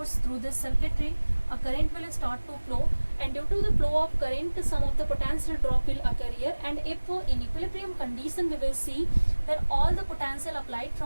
through this circuitry, a current will start to flow, and due to the flow of current, some of the potential drop will occur here. And if in equilibrium condition, we will see that all the potential applied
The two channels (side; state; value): both; inverted; correlation -1.00